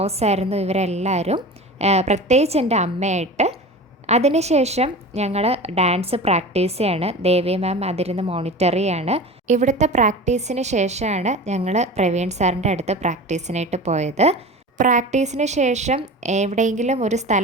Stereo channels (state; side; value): normal; both; correlation 0.34